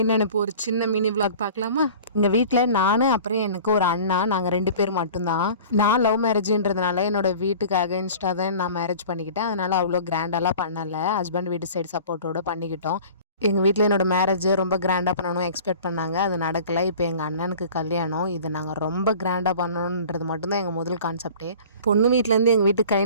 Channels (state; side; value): inverted; both; correlation -0.43